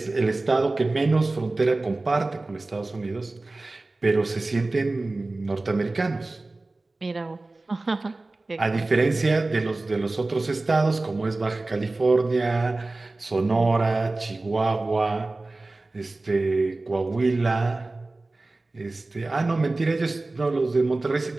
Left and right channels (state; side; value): quieter; left; 3.1 dB